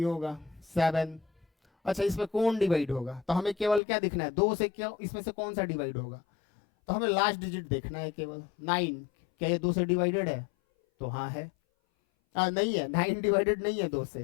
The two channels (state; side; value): drops out; right; at 3.8 s